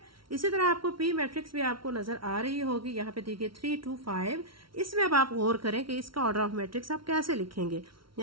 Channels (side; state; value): left; late; 0.74 ms